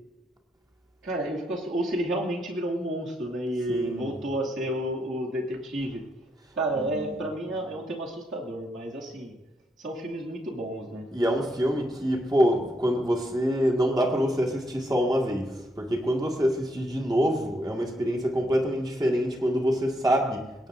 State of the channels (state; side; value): normal; both; correlation 0.78